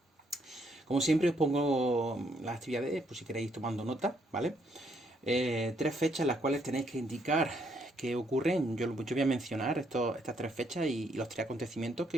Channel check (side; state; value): both; normal; correlation 0.72